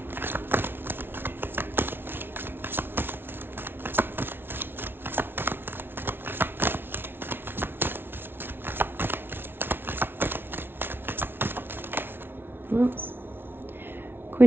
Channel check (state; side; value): late; left; 0.11 ms